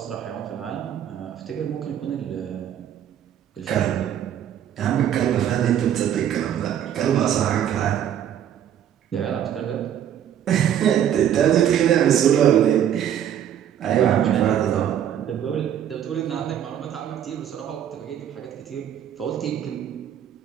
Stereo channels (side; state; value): left; quieter; 10.0 dB